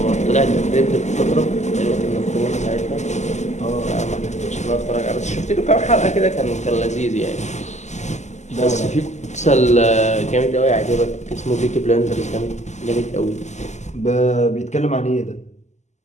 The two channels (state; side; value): late; right; 0.33 ms